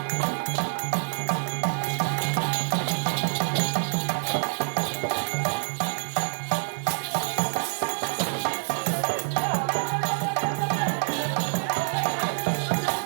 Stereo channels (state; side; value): silent; left; digital silence